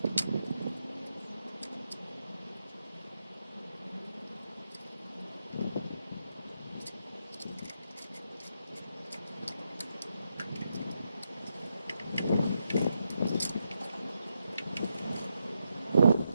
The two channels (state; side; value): inverted; both; correlation -0.84